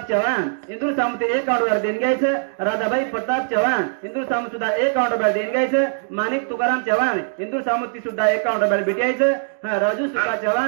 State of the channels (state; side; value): silent; left; digital silence